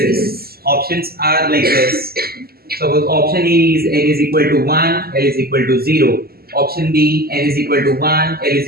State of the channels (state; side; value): late; left; 0.45 ms